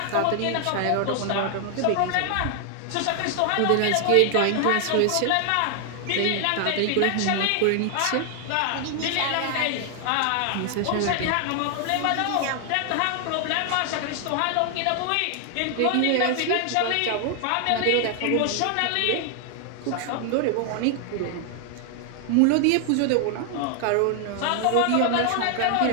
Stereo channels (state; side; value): different; both; correlation 0.00